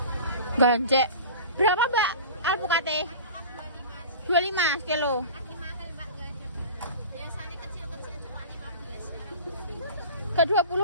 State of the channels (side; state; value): both; inverted; correlation -0.36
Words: gancek. Berapa mbak alpukate? 25 kilo. Biasanya kecil-kecil cuma 15. Ke